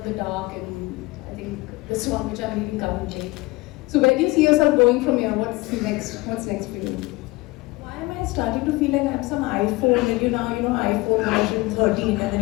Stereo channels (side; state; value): right; quieter; 22.1 dB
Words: the Dark, and I think this one which I'm reading currently. So where do you see yourself going from here? What's next? What's next for you? Why am I starting to feel like I'm some iPhone and iPhone version 13 and then